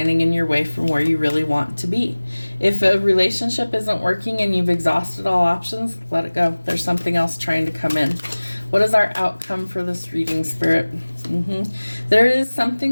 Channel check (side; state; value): both; inverted; correlation -1.00